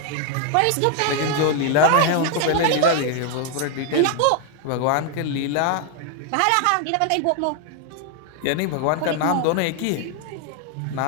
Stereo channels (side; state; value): both; different; correlation 0.00